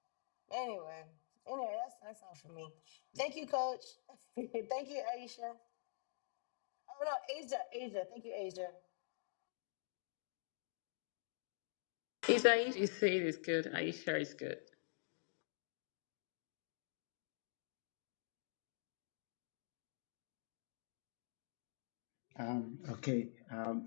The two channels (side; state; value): right; silent; digital silence